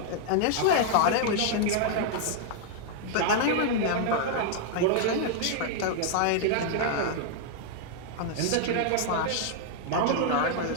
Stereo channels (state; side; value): different; both; correlation -0.01